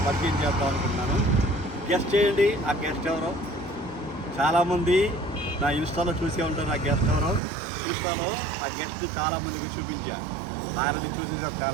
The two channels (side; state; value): left; drops out; at 7.4 s